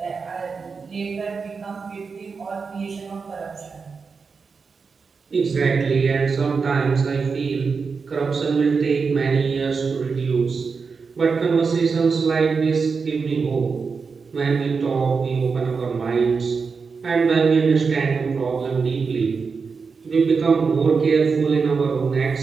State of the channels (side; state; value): left; quieter; 5.1 dB